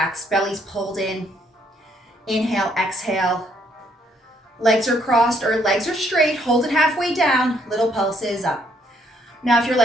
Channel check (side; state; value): both; normal; correlation 0.69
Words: belly's pulled in. Inhale, exhale. Legs are crossed or legs are straight. Hold it halfway down. Little pulses up. Now, if your